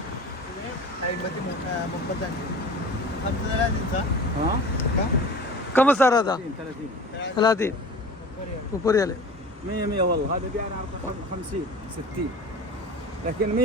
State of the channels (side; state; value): both; normal; correlation 0.38